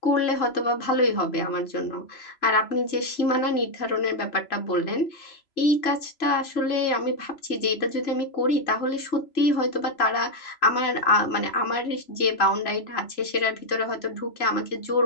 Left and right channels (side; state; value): right; late; 3.0 ms